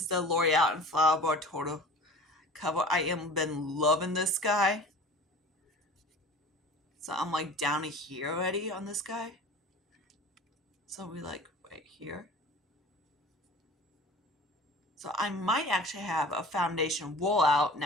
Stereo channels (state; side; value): normal; both; correlation 0.41